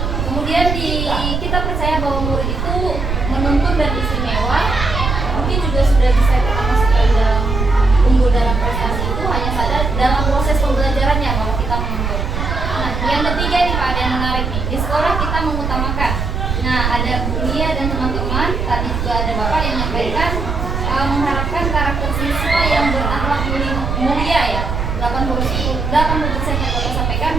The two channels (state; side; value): noise; right; rumble, 2 dB below the sound